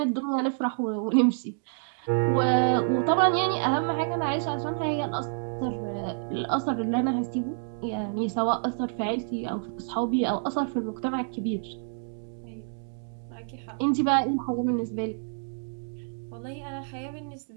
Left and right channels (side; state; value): left; silent; digital silence